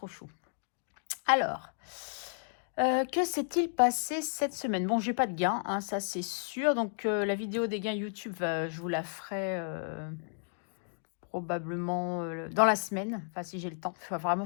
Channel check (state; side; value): silent; right; digital silence